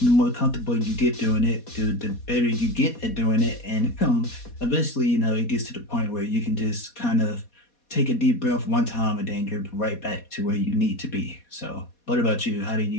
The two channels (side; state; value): right; late; 4.2 ms